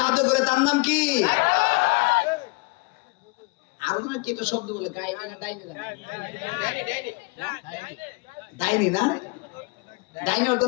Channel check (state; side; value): quieter; right; 27.8 dB